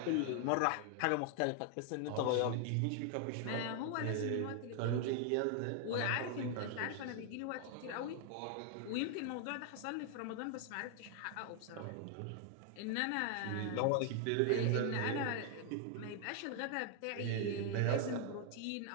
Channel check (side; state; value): both; different; correlation 0.00